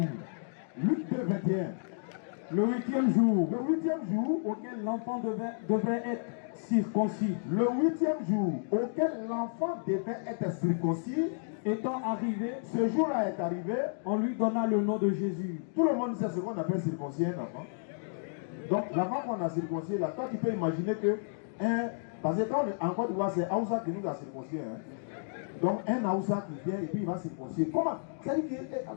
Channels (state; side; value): silent; right; digital silence